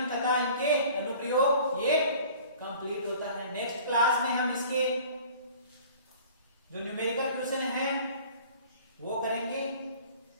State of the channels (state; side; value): inverted; both; correlation -0.47